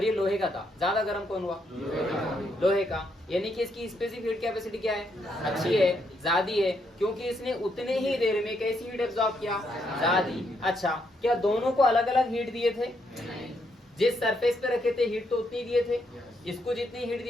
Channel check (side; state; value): both; normal; correlation 0.76